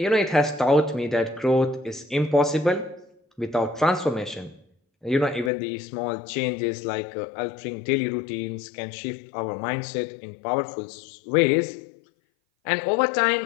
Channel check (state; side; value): drops out; right; at 5.5 s